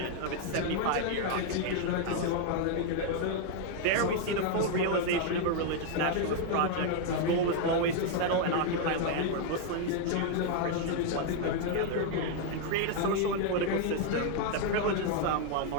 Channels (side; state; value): both; different; correlation 0.00